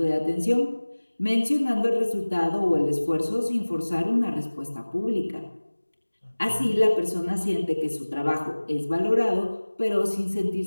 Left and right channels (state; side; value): inverted; both; correlation -1.00